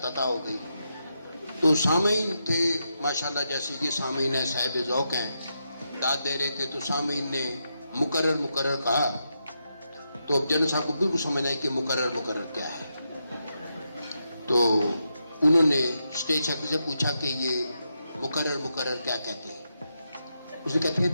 عطا ہو گئی. تو سامعین تھے ماشاءاللہ، جیسے یہ سامعین ہیں صاحب ذوق ہیں، داد دے رہے تھے تو سامعین نے مقرر کہا. تو اب جنرل صاحب کو بالکل سمجھ آئی کہ مقرر کیا ہے. تو انہوں نے اسٹیج سیکرٹری سے پوچھا کہ یہ مقرر کیا کہتے ہیں. اس نے کہتے ہیں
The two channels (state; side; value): inverted; both; correlation -0.84